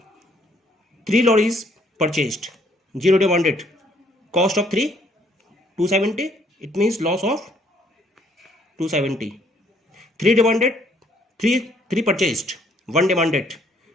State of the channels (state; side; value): normal; both; correlation 0.65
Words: 3 lorries purchased, 0 demanded, cost of 3 270, it means loss of 270. 3 demanded, 3 purchased, 1 demanded,